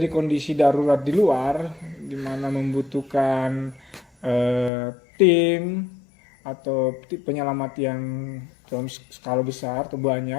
kondisi darurat di luar, di mana membutuhkan tim atau penyelamat yang dalam skala besar atau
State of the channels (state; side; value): drops out; right; at 4.7 s